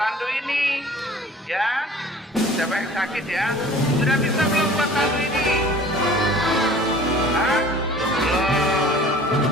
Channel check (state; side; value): normal; both; correlation 0.47